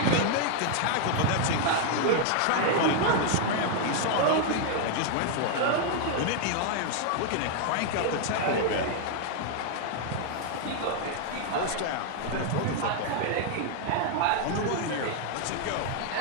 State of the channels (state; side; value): different; both; correlation 0.00